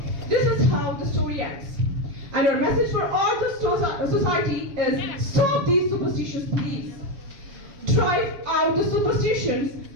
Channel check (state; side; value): late; left; 7.3 ms